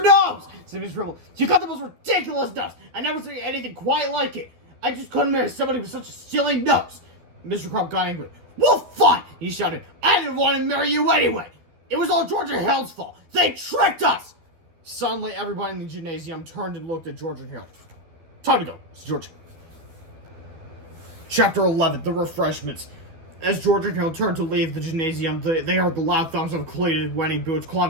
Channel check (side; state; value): left; late; 12 ms